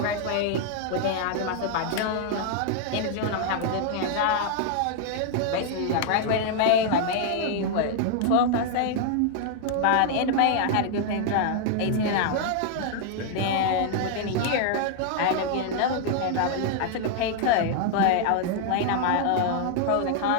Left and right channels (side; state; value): both; different; correlation -0.01